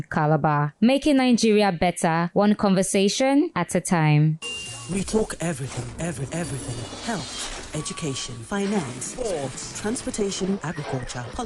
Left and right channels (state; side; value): identical; both; correlation 1.00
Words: Calabar, making Nigeria better, one conversation at a time. We talk everything. Health, education, finance, sports, transportation, agriculture,